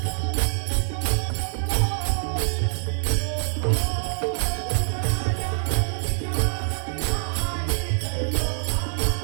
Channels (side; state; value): left; silent; 62 dB below the other